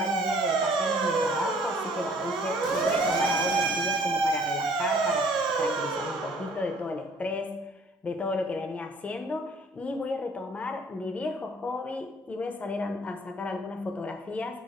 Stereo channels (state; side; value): normal; both; correlation 0.57